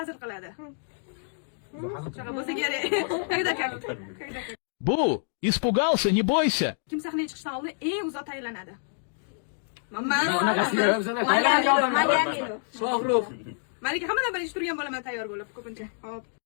qiladi? Shaka bo'lsa kerak. Когда как? Бу, испугался, не бойся. Kim sahnaga chiqishdan oldin eng uzoq tayyorlanadi? Shohrux. Malika hammadan birinchi turgan bo'laman tayyor bo'lib ko'pincha. Hop.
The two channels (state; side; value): silent; right; digital silence